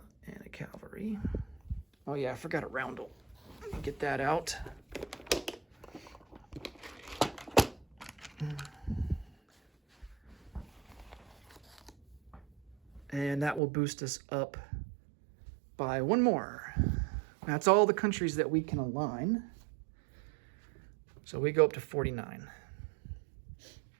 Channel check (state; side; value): drops out; left; at 13.6 s